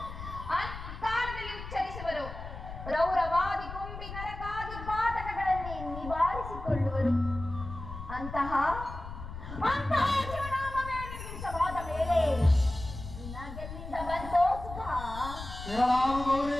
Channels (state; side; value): noise; left; rumble, 10 dB below the sound